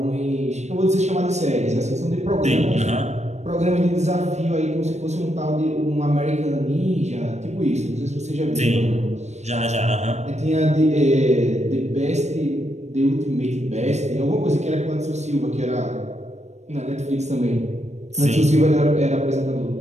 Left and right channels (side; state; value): left; late; 0.33 ms